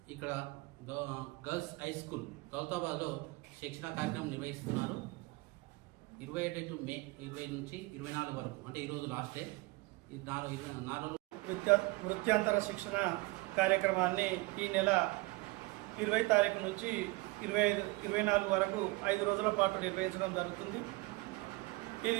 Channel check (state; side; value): quieter; left; 23.9 dB